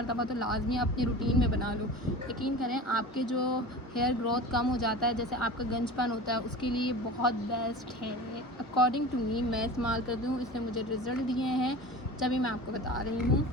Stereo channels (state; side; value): normal; both; correlation 0.34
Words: तो लाजमी अपनी रूटीन में बना लो, यकीन करें आपके जो हेयर ग्रोथ कम हो जाता है, जैसे आपका गंजपन होता है, उसके लिए बहुत बेस्ट है। अकॉर्डिंग टू मी, मैं इस्तेमाल करती हूँ, इसने मुझे रिज़ल्ट दिए हैं, तभी मैं आपको बता रही हूँ।